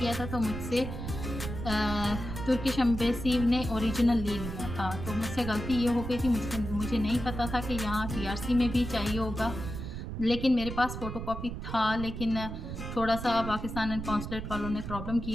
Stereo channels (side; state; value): right; noise; rumble, 7 dB below the sound